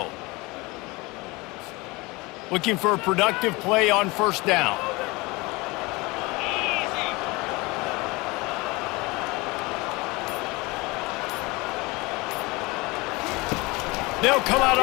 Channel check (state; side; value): quieter; right; 24.0 dB